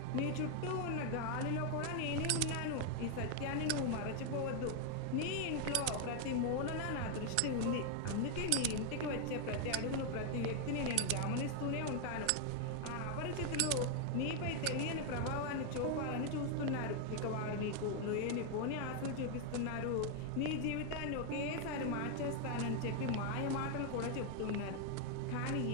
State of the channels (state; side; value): different; both; correlation 0.00